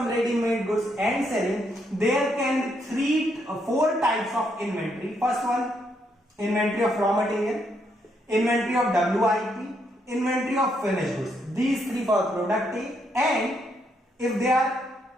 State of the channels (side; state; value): both; normal; correlation 0.76